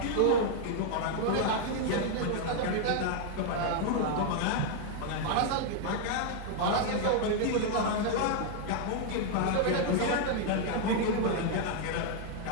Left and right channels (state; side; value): different; both; correlation 0.00